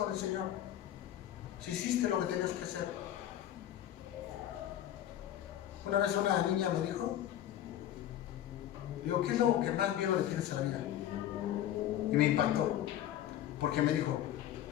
el Señor, si hiciste lo que tenías que hacer. Una vez una niña me dijo, digo, ¿qué es lo que más miedo le tienes a la vida? Y me impactó, porque me dijo,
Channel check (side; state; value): right; quieter; 11.8 dB